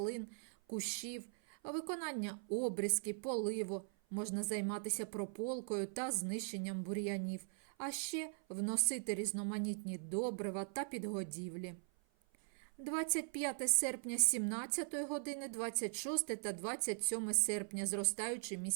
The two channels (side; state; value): left; silent; 51 dB below the other